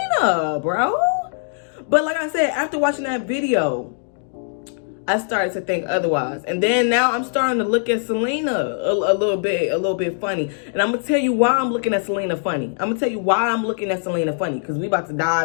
bro. But like I said, after watching that video, I started to think otherwise. And then now I'm starting to look at Selena a little bit funny. And I'm gonna tell you why I'm looking at Selena funny. Because we about to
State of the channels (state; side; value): silent; right; digital silence